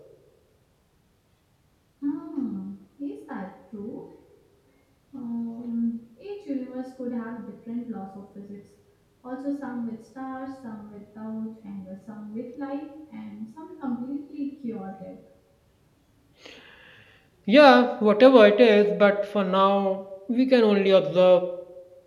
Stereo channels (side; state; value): both; identical; correlation 1.00